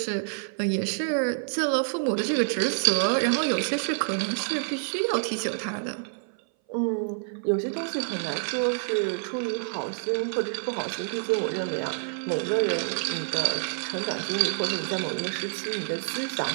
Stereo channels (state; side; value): silent; left; 58 dB below the other